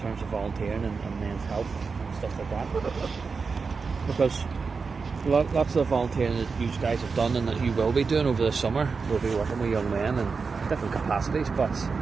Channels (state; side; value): quieter; left; 4.9 dB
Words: terms of volunteering and men's health and stuff like that. Because lots of volunteering that you guys have done and that you will be doing over the summer will be working with young men in different capacities, but